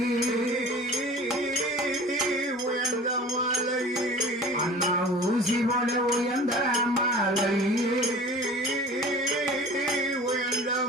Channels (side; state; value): both; normal; correlation 0.42